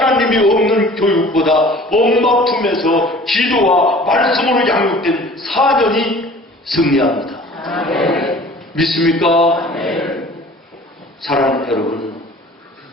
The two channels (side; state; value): both; normal; correlation 0.47